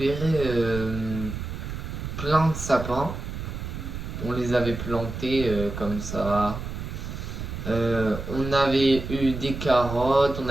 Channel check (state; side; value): noise; right; rumble, 7 dB below the sound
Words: plein de sapins. On les avait plantés comme ça. On avait eu des carottes, on